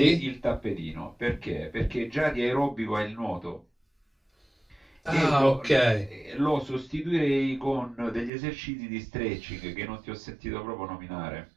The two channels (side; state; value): left; drops out; at 8.3 s